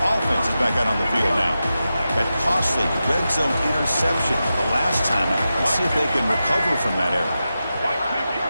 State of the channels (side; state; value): both; inverted; correlation -0.91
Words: offense is back out on the field now. That costly red zone interception the last time out. Let's see if they can recover from that error.